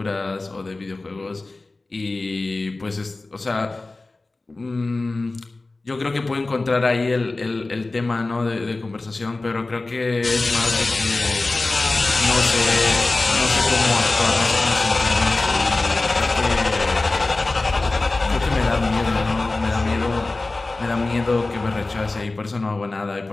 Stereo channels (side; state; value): right; quieter; 3.2 dB